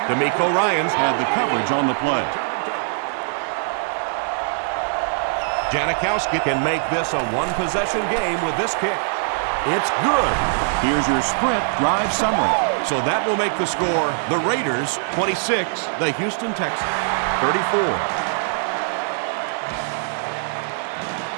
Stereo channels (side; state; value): left; silent; digital silence